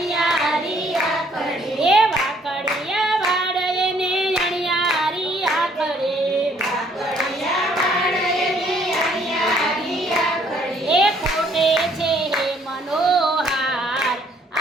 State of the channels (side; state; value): both; normal; correlation 0.64